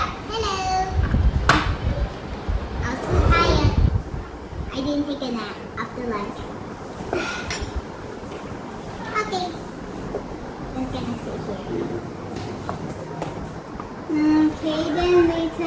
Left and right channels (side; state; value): both; identical; correlation 1.00